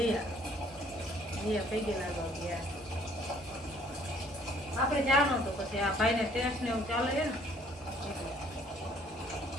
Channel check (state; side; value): normal; both; correlation 0.60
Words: જીયા પૈ ગયેલા ગયા. આપણે જવાનું તો પછી આ ભાઈને ટેસ્ટ ને એવું ચાલે છે ને